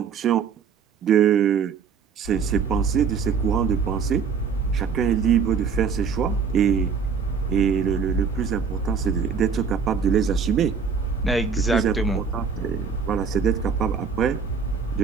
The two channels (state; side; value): quieter; left; 6.2 dB